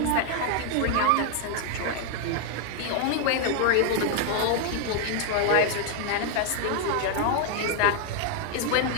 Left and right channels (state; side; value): different; both; correlation 0.00